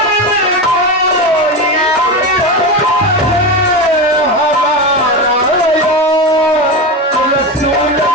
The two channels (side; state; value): both; normal; correlation 0.19